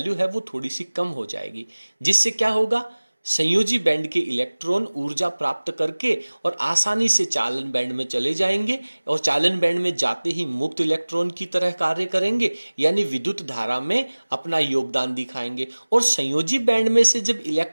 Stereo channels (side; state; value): both; inverted; correlation -1.00